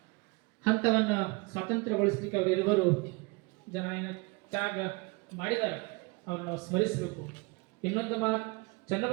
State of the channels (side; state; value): left; quieter; 27.1 dB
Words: ಹಂತವನ್ನು ಸ್ವಾತಂತ್ರ್ಯಗೊಳಿಸ್ಲಿಕ್ಕೆ ಅವರಿರುವರು ಜನ ತ್ಯಾಗ ಮಾಡಿದ್ದಾರೆ, ಅವ್ರನ್ನ ನಾವು ಸ್ಮರಿಸಬೇಕು. ಇನ್ನೊಂದು ಮಾತು,